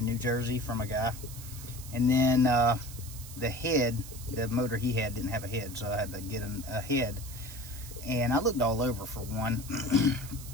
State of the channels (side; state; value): right; noise; hiss, 14 dB below the sound